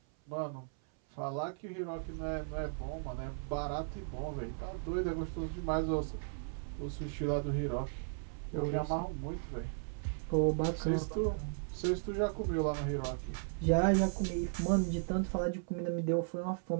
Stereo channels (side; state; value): left; silent; 54 dB below the other